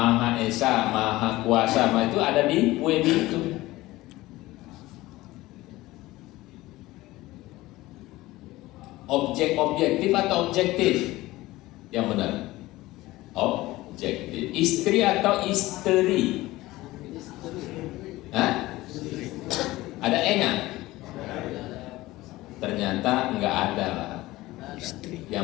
Esa, Maha Kuasa, itu ada di PUEBI itu. Objektif atau objektif? Yang benar. Objektif. Istri atau istri? Ada E-nya? Ternyata enggak ada.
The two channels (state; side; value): quieter; right; 18.3 dB